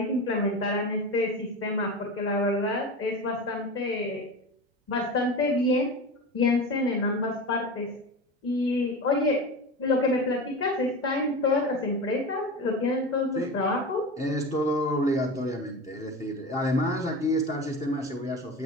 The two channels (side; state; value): both; normal; correlation 0.28